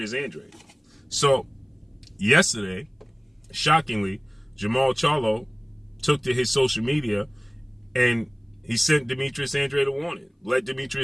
Andrade. So yesterday, shockingly, Jermall Charlo took to his social media and he sent Demetrius Andrade a warning. Let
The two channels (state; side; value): identical; both; correlation 1.00